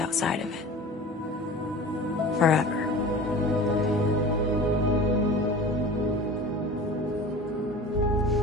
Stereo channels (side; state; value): both; normal; correlation 0.38